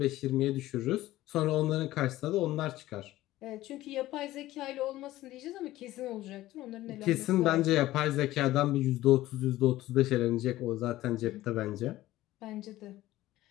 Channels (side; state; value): right; quieter; 15.9 dB